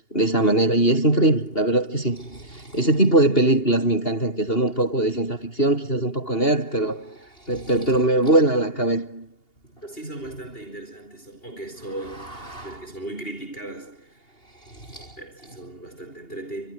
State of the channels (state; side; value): late; right; 2.8 ms